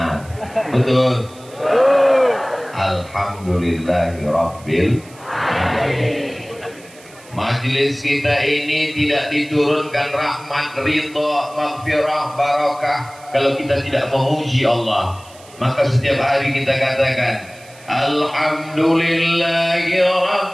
Betul? Alhamdulillahirabbil alamin. Majelis kita ini tidak diturunkan rahmat, ridha, maghfirah, barakah kalau kita tidak memuji Allah. Maka setiap hari kita katakan Alhamdulillahi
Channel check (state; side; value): noise; right; hiss, 23 dB below the sound